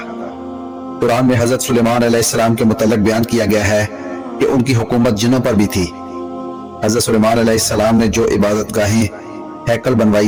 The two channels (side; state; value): both; identical; correlation 1.00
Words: قرآن میں حضرت سلیمان علیہ السلام کے متعلق بیان کیا گیا ہے کہ ان کی حکومت جنوں پر بھی تھی. حضرت سلیمان علیہ السلام نے جو عبادت گاہیں ہیکل